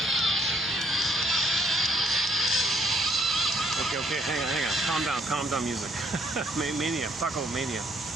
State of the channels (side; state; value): both; normal; correlation 0.67